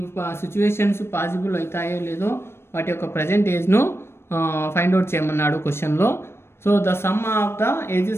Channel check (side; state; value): right; late; 0.12 ms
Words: situations possible అవుతాయో లేదో వాటి యొక్క present ఏజ్ను find out చేయమన్నాడు క్వశ్చన్లో. So the sum of the